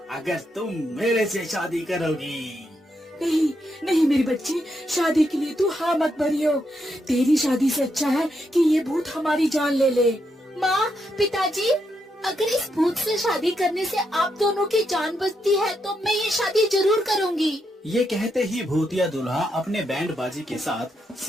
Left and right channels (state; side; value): normal; both; correlation 0.81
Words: अगर तुम मेरे से शादी करोगी। नहीं नहीं मेरी बच्ची, शादी के लिए तू हाँ मत भरियो। तेरी शादी से अच्छा है कि ये भूत हमारी जान ले ले। माँ, पिताजी, अगर इस भूत से शादी करने से आप दोनों की जान बचती है तो मैं ये शादी जरूर करूँगी। ये कहते ही भूतिया दूल्हा अपने बैंड बाजी के साथ